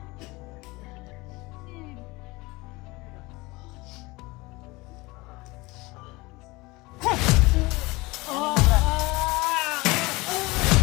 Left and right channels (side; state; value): right; quieter; 22.9 dB